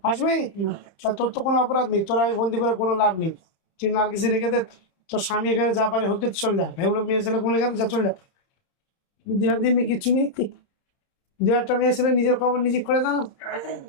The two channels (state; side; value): late; right; 30 ms